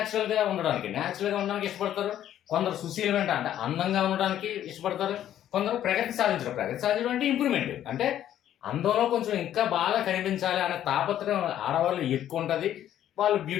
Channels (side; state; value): right; quieter; 11.4 dB